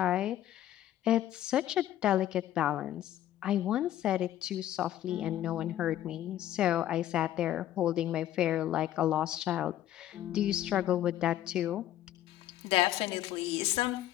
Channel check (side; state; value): right; quieter; 12.6 dB